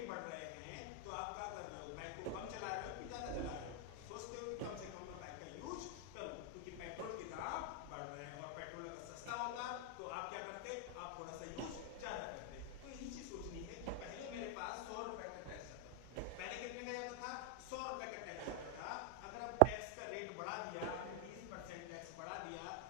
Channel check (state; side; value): different; both; correlation 0.00